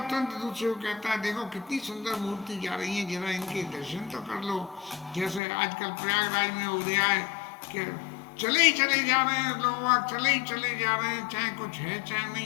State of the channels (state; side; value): drops out; right; at 5.4 s